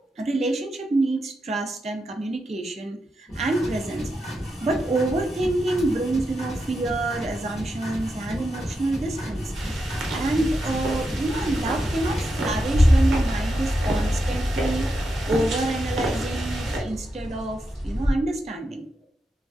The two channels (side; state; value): both; normal; correlation 0.86